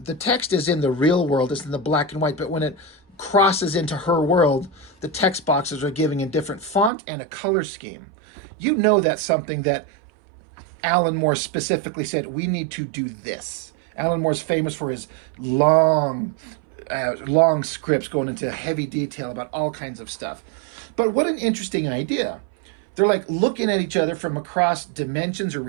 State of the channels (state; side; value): drops out; left; at 6.9 s